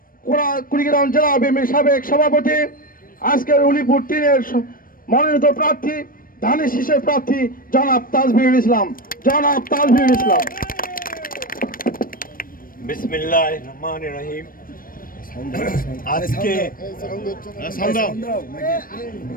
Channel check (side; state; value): right; late; 0.41 ms